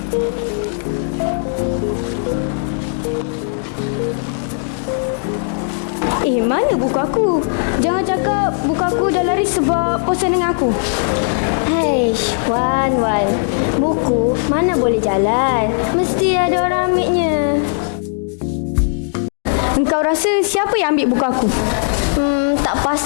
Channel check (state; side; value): silent; right; digital silence